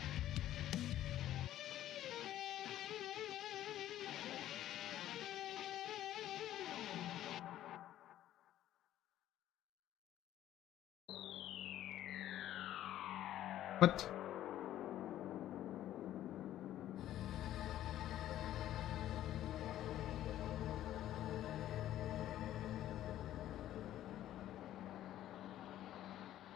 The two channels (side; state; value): right; quieter; 12.8 dB